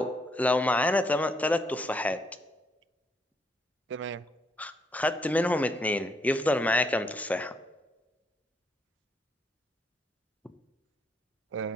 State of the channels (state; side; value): normal; both; correlation 0.72